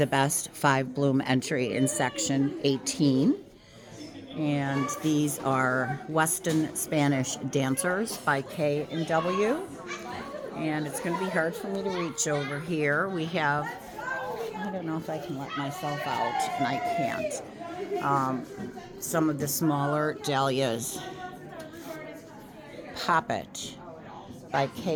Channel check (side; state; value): both; identical; correlation 1.00